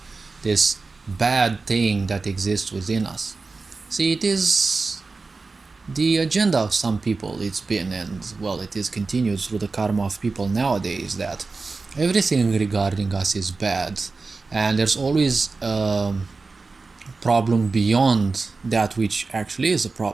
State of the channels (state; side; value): quieter; left; 4.0 dB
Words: this bad thing that exists within us. See, it is the agenda of some people, it's been, and well, it is continued through the karma of people nowadays, that everything regarding us is bad, and there's always a problem beyond that which actually is a